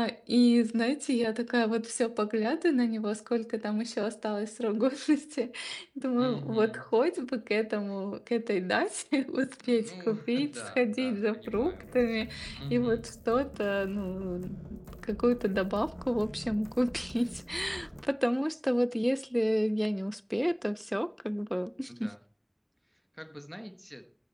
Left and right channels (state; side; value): identical; both; correlation 1.00